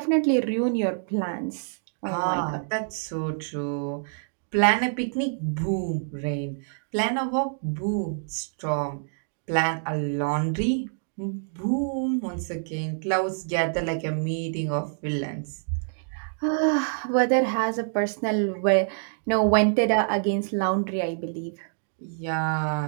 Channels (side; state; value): left; silent; digital silence